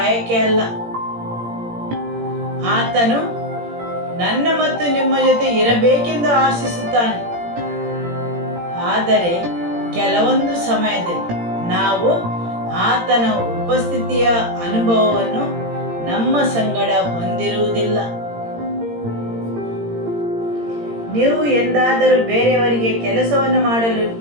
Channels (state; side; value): late; left; 17 ms